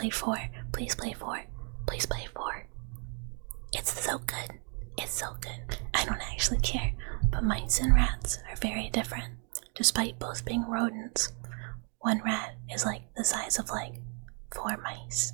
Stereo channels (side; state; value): left; quieter; 39.4 dB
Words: 4, please play 4. It's so good. I don't actually care, but mice and rats are very different, despite both being rodents. One rat is like the size of like 4 mice,